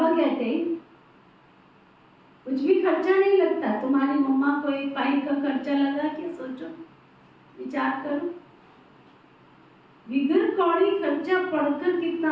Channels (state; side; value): identical; both; correlation 1.00